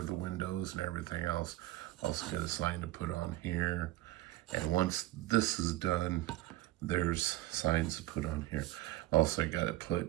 the windows and everything else. Also got a sign to put on here. And once this is done, there's signs to put on here. Also, I got to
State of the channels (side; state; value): left; quieter; 16.7 dB